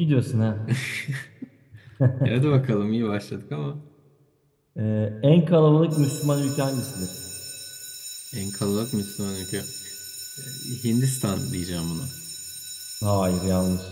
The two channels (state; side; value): identical; both; correlation 1.00